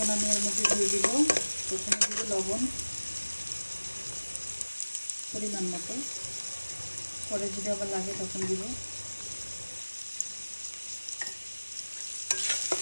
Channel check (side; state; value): both; inverted; correlation -1.00